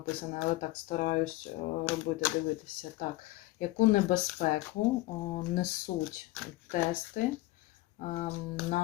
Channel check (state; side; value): quieter; right; 18.8 dB